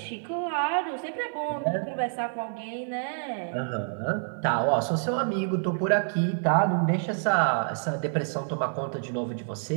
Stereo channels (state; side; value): silent; left; 57 dB below the other